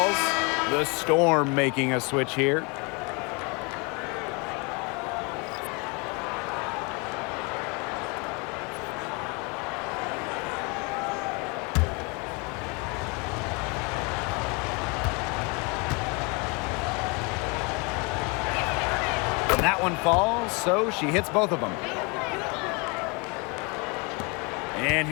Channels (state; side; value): quieter; right; 30.4 dB